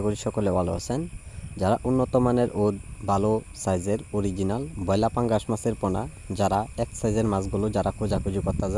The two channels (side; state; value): both; identical; correlation 1.00